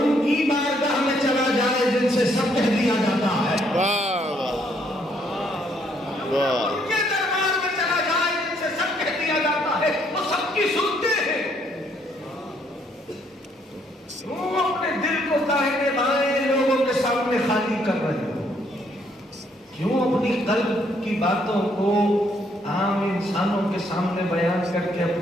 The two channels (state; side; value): normal; both; correlation 0.69